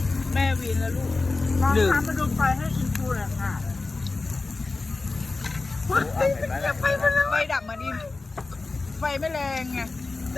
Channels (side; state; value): right; quieter; 3.6 dB